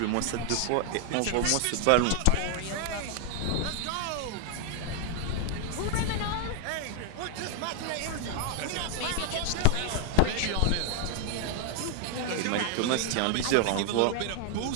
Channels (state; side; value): different; both; correlation 0.00